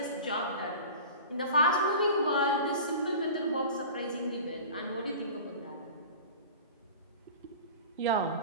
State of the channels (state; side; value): inverted; both; correlation -0.37